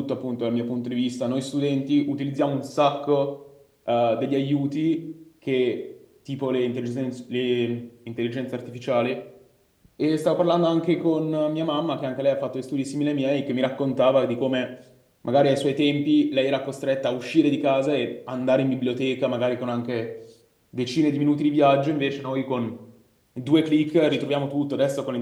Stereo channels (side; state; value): both; identical; correlation 1.00